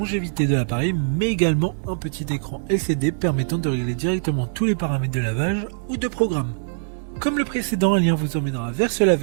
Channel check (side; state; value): left; silent; digital silence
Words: de l'appareil, mais également un petit écran LCD permettant de régler directement tous les paramètres de lavage ou de programme. Comme le précédent, un lien vous emmènera vers ce